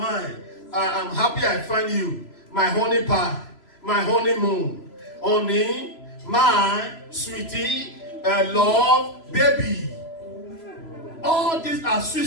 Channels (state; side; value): late; right; 3.0 ms